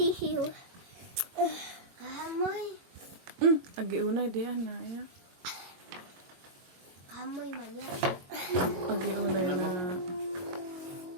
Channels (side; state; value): left; late; 22 ms